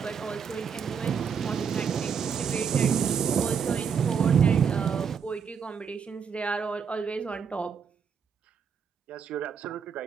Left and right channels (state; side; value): quieter; left; 6.8 dB